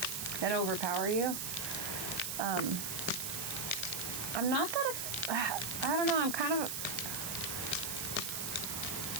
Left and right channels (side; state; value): right; noise; hiss, 2 dB below the sound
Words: and overpower you. I'm not that, I don't know, I'm kind of,